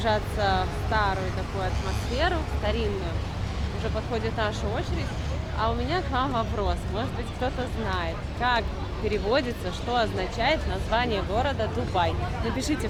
в старую такую атмосферу, старинную. Уже подходит наша очередь. А у меня к вам вопрос. Может быть, кто-то знает, как переводится, что означает название города Дубай. Напишите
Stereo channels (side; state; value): both; identical; correlation 1.00